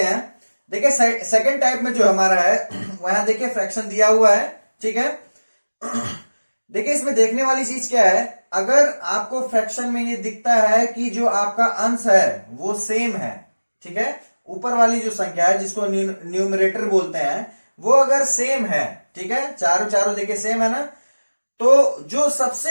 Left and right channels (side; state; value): both; inverted; correlation -1.00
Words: देखिए सेकंड टाइप में जो हमारा है वहां देखिए फ्रैक्शन दिया हुआ है, ठीक है। देखिए इसमें देखने वाली चीज क्या है, अगर आपको फ्रैक्शन में ये दिखता है कि जो आपका अंश है वो सेम है, ठीक है, ऊपर वाली जो संख्या है जिसको न्यूमरेटर बोलते हैं वो अगर सेम है, ठीक है, चारों चारों देखिए सेम है ना, तो जो